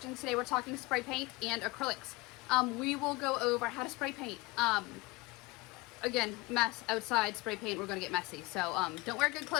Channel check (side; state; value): right; quieter; 23.2 dB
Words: Today we're talking spray paint and acrylics. We will go over how to spray paint. Again, mess outside spray paint, we're gonna get messy. So don't wear good